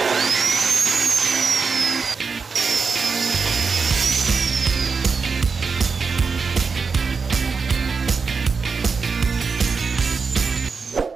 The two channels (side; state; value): left; quieter; 5.0 dB